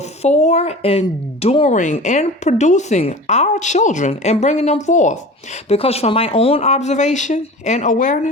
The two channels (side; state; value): both; normal; correlation 0.37